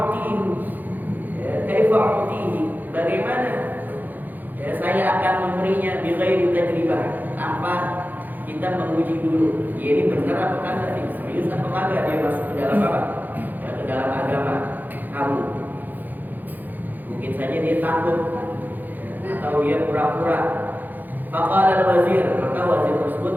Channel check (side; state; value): left; late; 0.085 ms